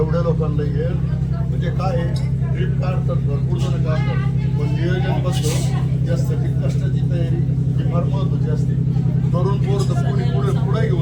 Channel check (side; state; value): both; identical; correlation 1.00